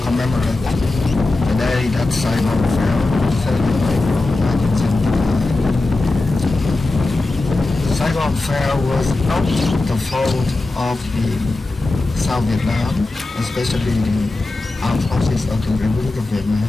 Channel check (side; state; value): right; quieter; 3.1 dB